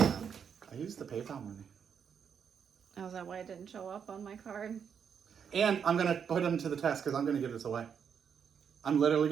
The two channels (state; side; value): quieter; left; 7.3 dB